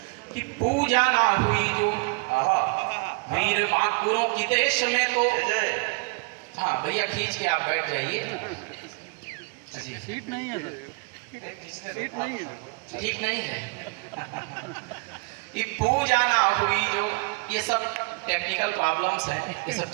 कि पूजा ना हुई जो वीर महापुरों की देश में तो। हाँ भैया खींच के आप बैठ जाइए। सीट नहीं है सर, सीट नहीं है, ठीक नहीं है। ये पूजा ना हुई जो, ये सब टेक्निकल प्रॉब्लम्स हैं, ये सब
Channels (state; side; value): quieter; left; 31.3 dB